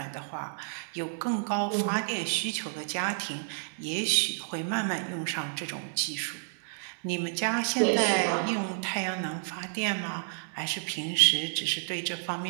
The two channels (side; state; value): left; silent; digital silence